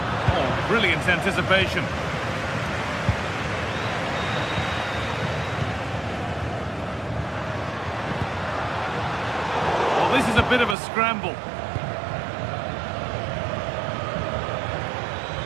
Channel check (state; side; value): drops out; left; at 10.8 s